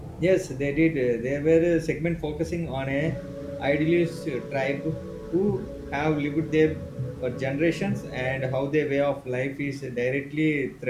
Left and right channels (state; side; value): identical; both; correlation 1.00